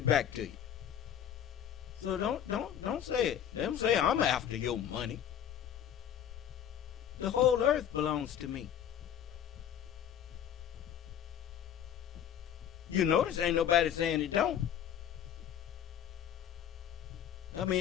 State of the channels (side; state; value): right; quieter; 9.6 dB